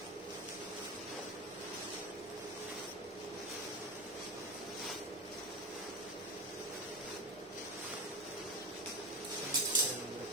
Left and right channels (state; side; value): normal; both; correlation 0.21